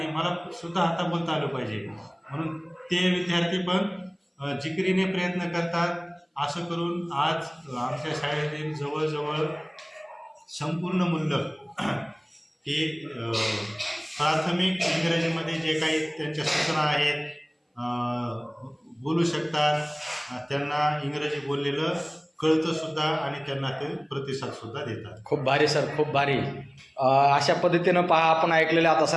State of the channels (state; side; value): identical; both; correlation 1.00